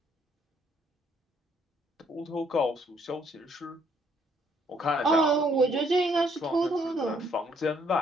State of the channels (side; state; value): both; normal; correlation 0.67